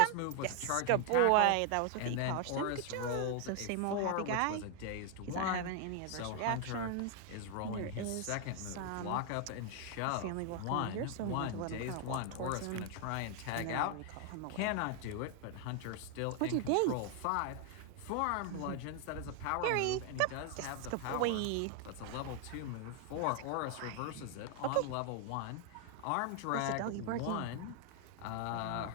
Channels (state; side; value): different; both; correlation 0.00